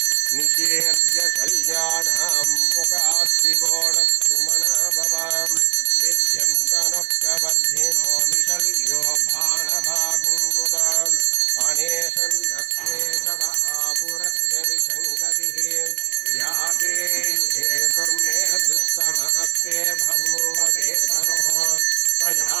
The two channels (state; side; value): quieter; left; 19.8 dB